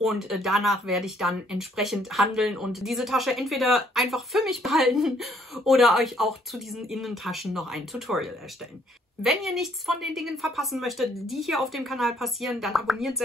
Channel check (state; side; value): normal; both; correlation 0.66